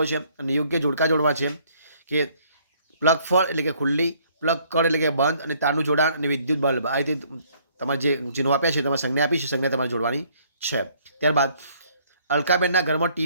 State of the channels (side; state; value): both; inverted; correlation -0.63